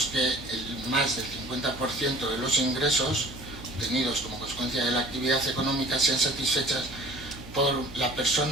que más del 50% de los ingresos obtenidos como consecuencia de la actividad económica sean satisfechas por la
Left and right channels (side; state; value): right; noise; hum, 16 dB below the sound